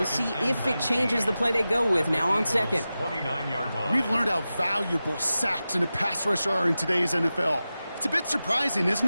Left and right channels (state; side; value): inverted; both; correlation -0.94